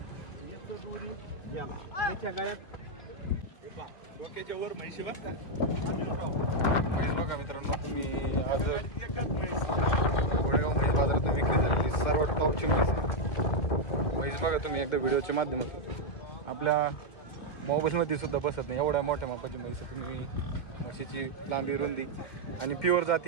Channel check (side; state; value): right; late; 1.9 ms